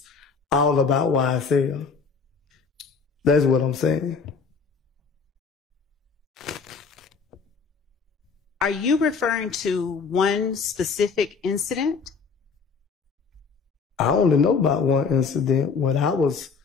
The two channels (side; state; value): right; quieter; 5.3 dB